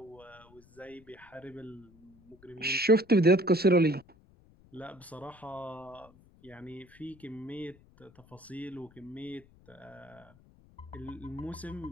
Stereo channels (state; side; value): noise; left; rumble, 26 dB below the sound